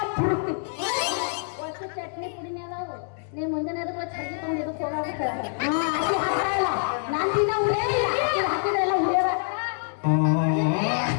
ಚಟ್ನಿ ಪುಡಿನೇ ಅದಾವು. ನೀವ್ ಮುಂದಿನ ಚಟ್ನಿ ತುಂಬ ಇದಕ್ಕೆ ಹೋಗಾಗುತ್ತೆ. ನಾನು ದಿನ ಹಾಕಿದ್ರೆಲ್ಲ ಹುರಿಯವ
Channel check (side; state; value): right; silent; digital silence